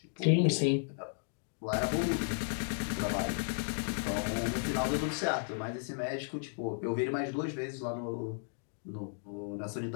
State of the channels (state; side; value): silent; right; digital silence